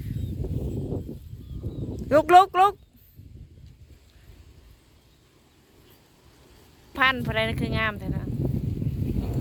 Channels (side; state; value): both; identical; correlation 1.00